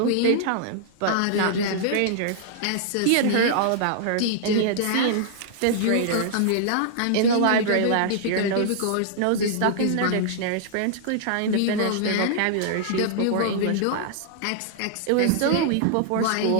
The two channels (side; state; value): both; different; correlation -0.01